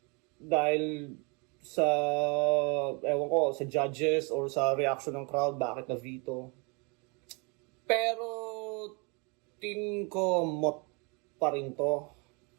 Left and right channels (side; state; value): left; quieter; 31.9 dB